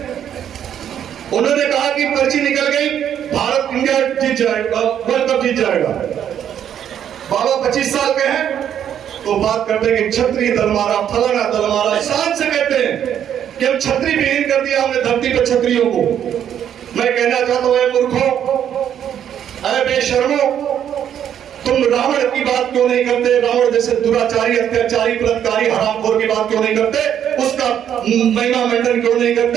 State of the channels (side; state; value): left; quieter; 9.6 dB